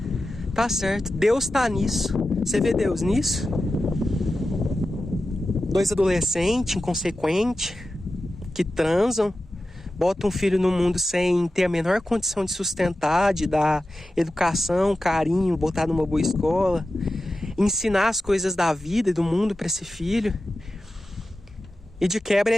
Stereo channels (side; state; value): both; normal; correlation 0.93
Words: Tá certo. Deus tá nisso. Você vê Deus nisso? Dois adolescentes inconsequentes que transam, botam um filho no mundo sem ter a menor condição de sustentar, de dar educação, carinho, botar numa boa escola, ensinar as coisas da vida e do mundo para esse filho. E de quebra